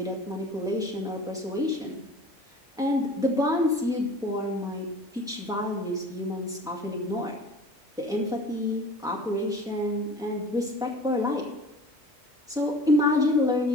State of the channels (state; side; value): normal; both; correlation 0.43